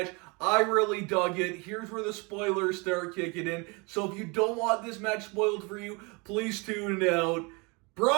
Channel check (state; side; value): quieter; left; 29.1 dB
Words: I really dug it. Here's where the spoilers start kicking in. So if you don't want this match spoiled for you, please tune out.